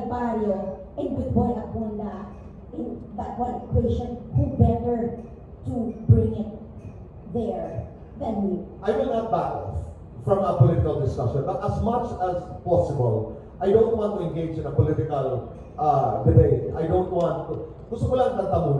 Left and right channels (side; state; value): both; identical; correlation 1.00